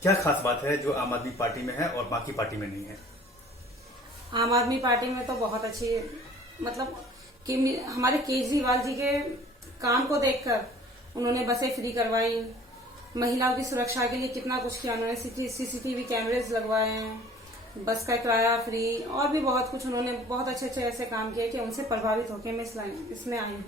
क्या खास बात है जो आम आदमी पार्टी में है और बाकी पार्टी में नहीं है? आम आदमी पार्टी में तो बहुत अच्छी, मतलब कि हमारे केजरीवाल जी के काम को देखकर उन्होंने बसें फ्री करवाई, महिलाओं की सुरक्षा के लिए कितना कुछ किया उन्होंने। सीसीटीवी कैमरेज लगवाए हैं, बस का किराया फ्री, और भी बहुत कुछ उन्होंने बहुत अच्छे अच्छे ऐसे काम किए कि उनसे प्रभावित होकर मैं इसमें आई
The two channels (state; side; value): normal; both; correlation 0.50